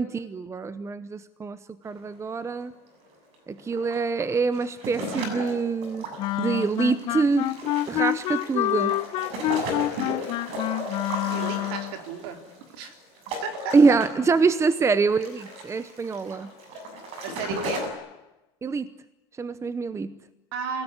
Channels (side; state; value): both; normal; correlation 0.60